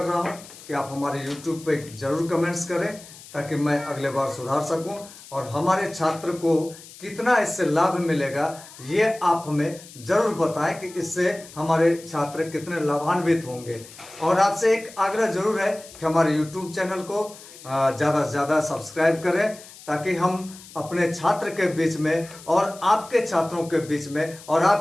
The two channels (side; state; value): left; noise; hiss, 18 dB below the sound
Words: रहा हूं कि आप हमारे YouTube पे जरूर कमेंट्स करें ताकि मैं अगले बार सुधार सकूं, और हमारे छात्र को कितना इससे लाभ मिलेगा ये आप हमें जरूर बताएं कि इससे हमारे छात्र कितने लाभान्वित होंगे। और आपसे एक आग्रह जरूर है कि हमारे YouTube चैनल को ज़्यादा से ज़्यादा सब्सक्राइब करें ताकि हम अपने छात्र के बीच में और आपके छात्रों के बीच में और